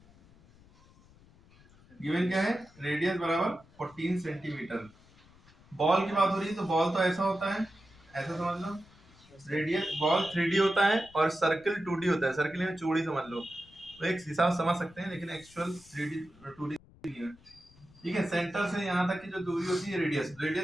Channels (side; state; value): left; noise; rumble, 26 dB below the sound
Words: है, रेडियस बराबर 14 सेंटीमीटर। बॉल की बात हो रही है, तो बॉल तो ऐसा होता है, ऐसा समझ लो, रेडियस बॉल 3D होता है और सर्कल 2D होता है। सर्कल में चौड़ी समझ लो, तो एक हिसाब समझ सकते हैं, लेकिन एक्चुअल 3D 2D नहीं है। ठीक है, सेंटर से यहाँ तक की जो दूरी होती है रेडियस